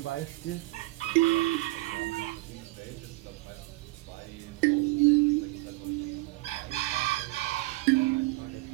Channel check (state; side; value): quieter; left; 21.1 dB